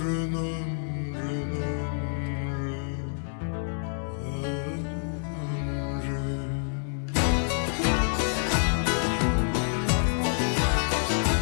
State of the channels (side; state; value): right; silent; digital silence